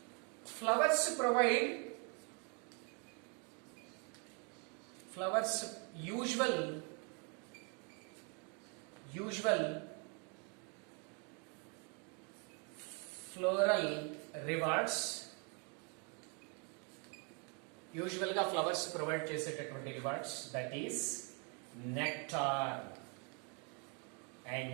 flowers usual floral rewards. యూజువల్గా ఫ్లవర్స్ ప్రొవైడ్ చేసేటటువంటి rewards, that is nectar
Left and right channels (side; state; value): left; quieter; 35.8 dB